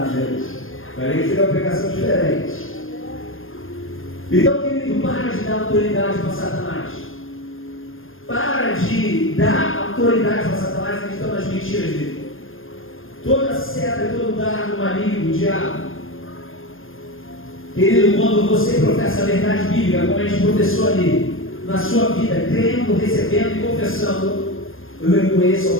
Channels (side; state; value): right; late; 0.59 ms